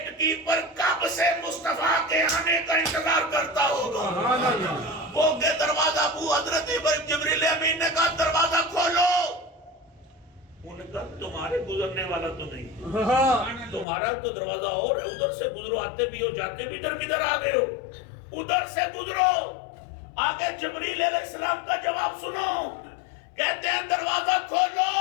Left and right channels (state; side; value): drops out; right; at 13.9 s